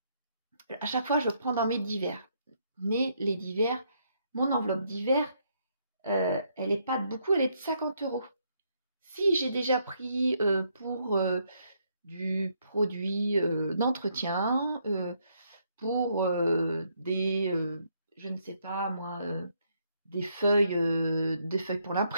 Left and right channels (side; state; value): both; inverted; correlation -0.73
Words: à chaque fois, je prends dans mes divers. Mais les divers, mon enveloppe divers, elle n'est pas de beaucoup, elle est de 50 €. Si j'ai déjà pris pour du produit d'entretien, pour je ne sais pas moi, des feuilles pour